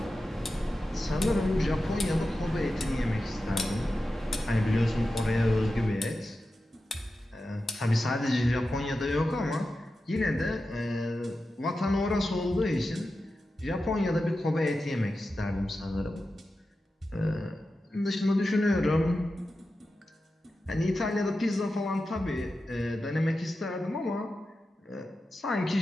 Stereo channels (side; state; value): both; normal; correlation 0.92